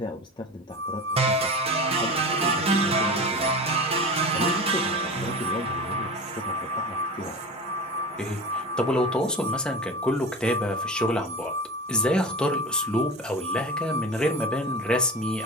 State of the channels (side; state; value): both; normal; correlation 0.31